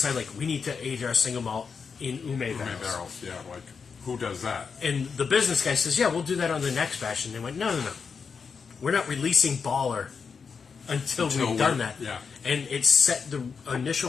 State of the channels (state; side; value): quieter; right; 5.7 dB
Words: like, we need to age our single malt in ume barrels. Barrels, yeah. Like, who does that? And the business guy says, yeah, we'll do that on the next batch. And they went, no. We're not releasing Baller until we've done that. Yeah. And it set the